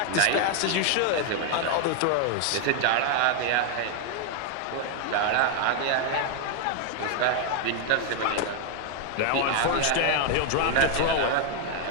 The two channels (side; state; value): both; different; correlation 0.00